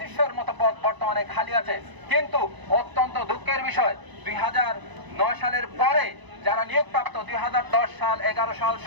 মতো পদ বর্তমানে খালি আছে। কিন্তু অত্যন্ত দুঃখের বিষয়, 2009 সালের পরে যারা নিয়োগপ্রাপ্ত 2010 সাল 11 সাল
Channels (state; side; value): late; left; 1.0 ms